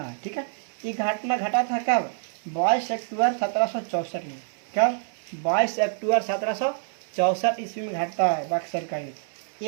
है। ठीक है, ये घटना घटा था कब? 22 अक्टूबर 1764 में। कब? 22 अक्टूबर 1764 ईस्वी में घटता है बक्सर का युद्ध।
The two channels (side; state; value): left; silent; 61 dB below the other